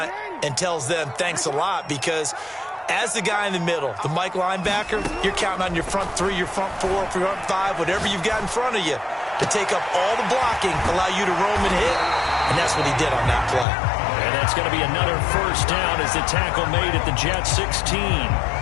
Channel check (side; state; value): right; drops out; at 13.7 s